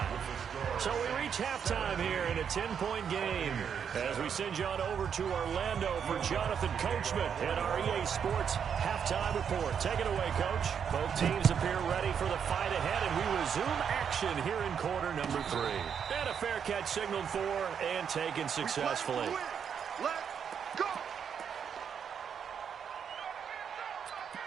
So we reach halftime here in a 10-point game as we send you on over to Orlando for Jonathan Coachman and our EA Sports halftime report. Take it away, Coach. Both teams appear ready for the fight ahead, and we resume action here in quarter number 3. And a fair catch signaled for and taken successfully. Let's go.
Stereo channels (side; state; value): left; quieter; 7.5 dB